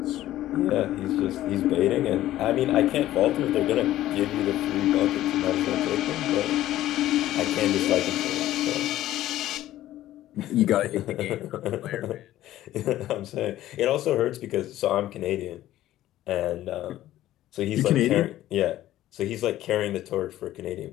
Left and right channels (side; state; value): right; quieter; 14.1 dB